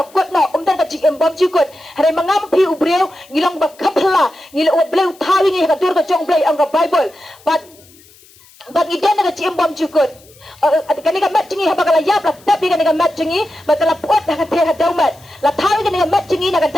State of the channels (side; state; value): left; noise; hiss, 26 dB below the sound